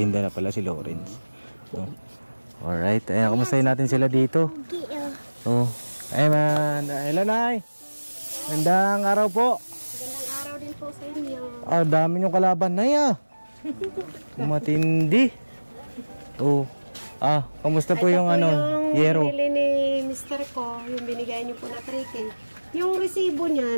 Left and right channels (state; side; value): inverted; both; correlation -1.00